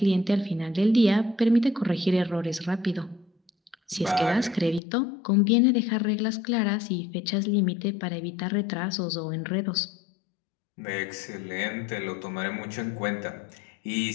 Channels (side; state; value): right; drops out; at 4.8 s